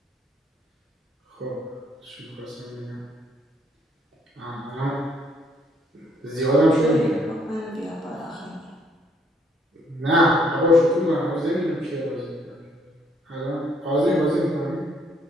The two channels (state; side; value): normal; both; correlation 0.67